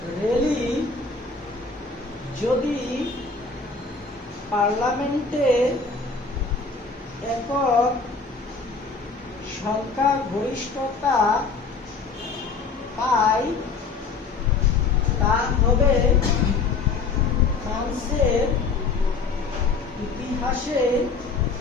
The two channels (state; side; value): quieter; right; 4.5 dB